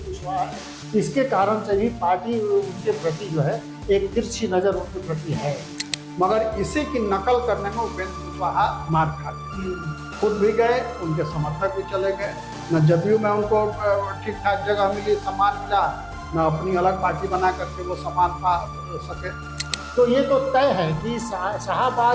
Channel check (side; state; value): both; identical; correlation 1.00